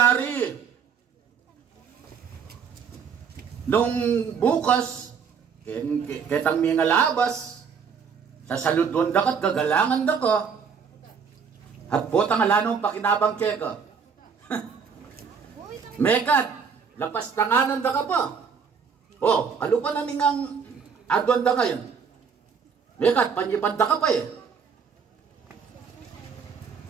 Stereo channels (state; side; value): quieter; left; 6.4 dB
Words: Nung bukas, ketang mga labas, sa saludon da kat gagalangan da ka. At botang alanong pakinabang keka. Mekad, lapas tanganan da ka pa. Kalupan na ningang adwan da ngayon. Mekad, panyipanda ka pa eh.